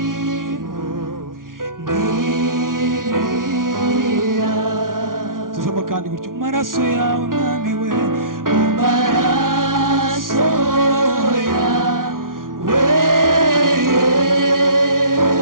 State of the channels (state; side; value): late; left; 0.90 ms